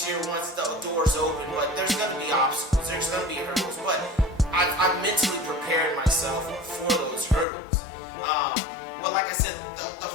once the doors open, but there's going to be obstacles, there's going to be hurdles, but I've mentally prepared myself for those hurdles. But like I said, the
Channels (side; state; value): right; drops out; at 7.5 s